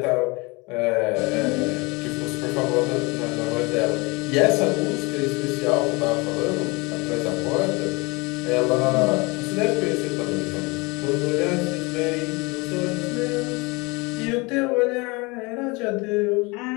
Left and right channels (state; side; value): quieter; right; 26.4 dB